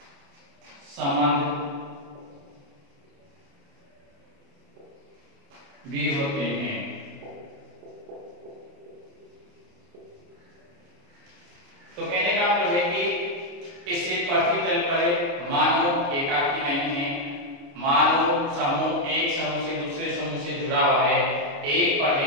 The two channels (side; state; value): left; late; 29 ms